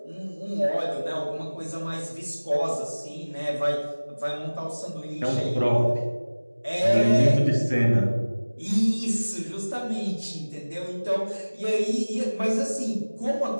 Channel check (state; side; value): inverted; both; correlation -1.00